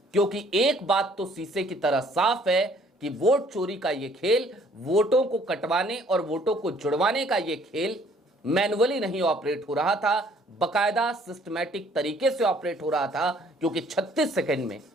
क्योंकि एक बात तो शीशे की तरह साफ है कि वोट चोरी का ये खेल, वोटों को कटवाने और वोटों को जुड़वाने का ये खेल मैनुअली नहीं ऑपरेट हो रहा था, बकायदा सिस्टमैटिक तरीके से ऑपरेट हो रहा था, क्योंकि 36 सेकंड में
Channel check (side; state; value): both; normal; correlation 0.60